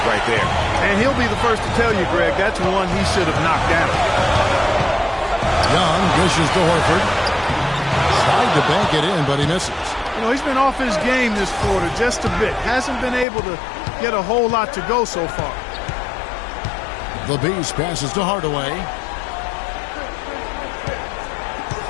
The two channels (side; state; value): right; drops out; at 13.2 s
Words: right there. And he'll be the first to tell you, Greg, that's one he should have knocked down. Young dishes to Horford. Tried to bank it in, but he misses. You know, he's been off his game this quarter just a bit. Hasn't been able to get a whole lot to go so far. The Beast passes to Hardaway.